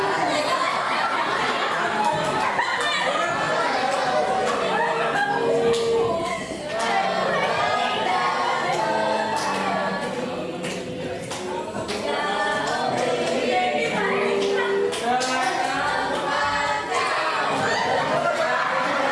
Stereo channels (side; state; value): both; identical; correlation 1.00